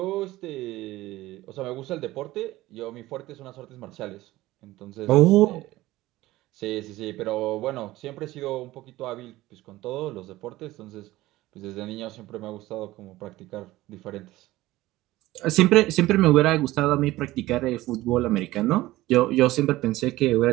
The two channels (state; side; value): quieter; left; 17.4 dB